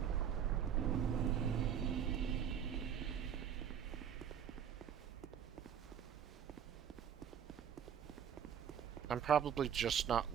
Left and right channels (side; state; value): left; quieter; 8.6 dB